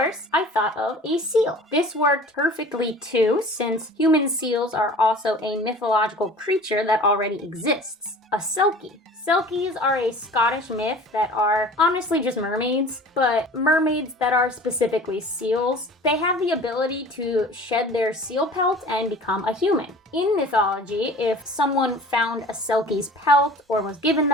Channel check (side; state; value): both; normal; correlation 0.43